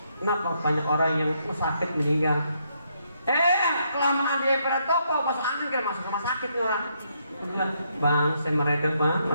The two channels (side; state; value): both; inverted; correlation -0.75